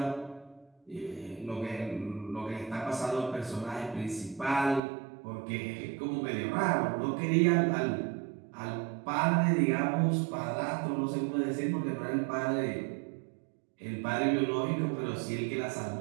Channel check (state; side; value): drops out; left; at 4.8 s